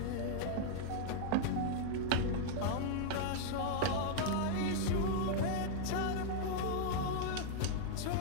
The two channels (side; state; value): both; different; correlation -0.01